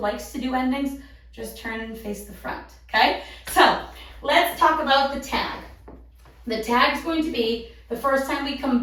to do endings, just turn and face the front, okay? So let's talk about the tag. The tag is going to be the first time we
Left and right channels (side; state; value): both; identical; correlation 1.00